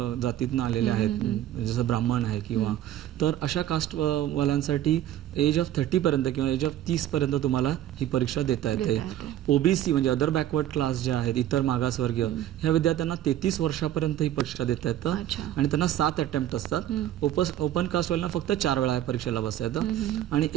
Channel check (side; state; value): left; quieter; 12.1 dB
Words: जातीतनं आलेले आहेत, जसं ब्राह्मण आहे किंवा, तर अशा कास्टवाल्यांसाठी एज ऑफ 30 पर्यंत किंवा एज ऑफ 30 पर्यंत तुम्हाला ही परीक्षा देता येते. ओबीसी म्हणजे अदर बॅकवर्ड क्लास जे आहेत, इतर मागासवर्गीय, ह्या विद्यार्थ्यांना 33 वर्षापर्यंत ही परीक्षा देता येतं आणि त्यांना 7 अटेम्प्ट असतात. ओपन कास्टवाल्यांना फक्त 4 वेळा या परीक्षेला बसता येतं. आणि